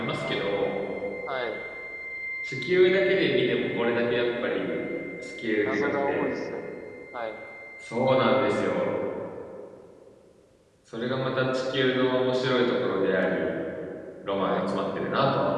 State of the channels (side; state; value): both; identical; correlation 1.00